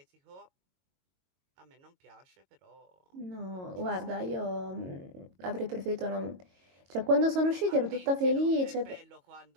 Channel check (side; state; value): left; late; 22 ms